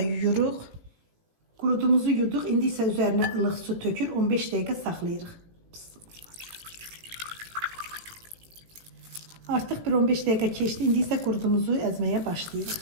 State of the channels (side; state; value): left; late; 18 ms